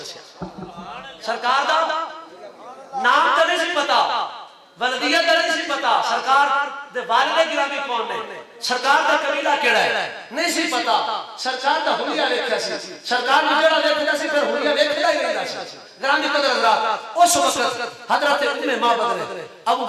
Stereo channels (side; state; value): both; identical; correlation 1.00